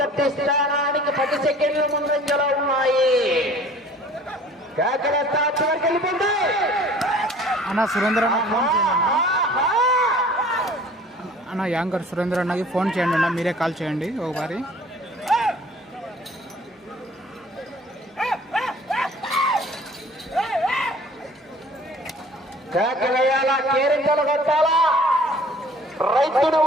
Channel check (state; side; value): normal; both; correlation 0.50